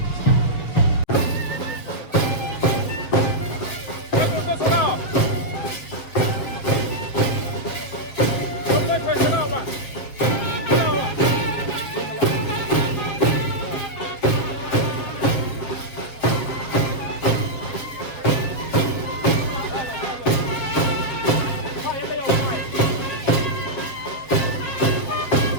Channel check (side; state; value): right; late; 7.4 ms